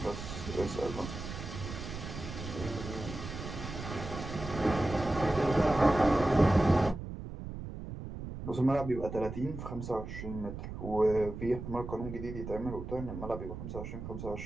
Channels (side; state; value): right; noise; rumble, 8 dB below the sound